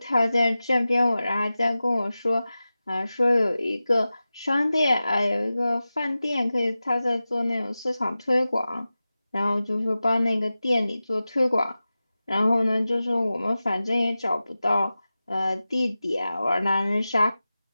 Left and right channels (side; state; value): both; inverted; correlation -0.95